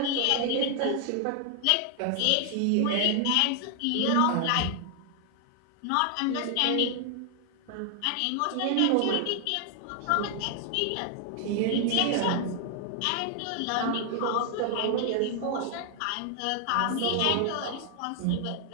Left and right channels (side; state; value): both; different; correlation 0.00